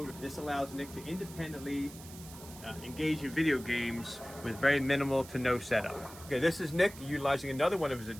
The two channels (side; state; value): right; noise; hiss, 17 dB below the sound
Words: This allows Nick to independently engage in video games with very minimal to no setup. Okay, this is Nick utilizing another one of his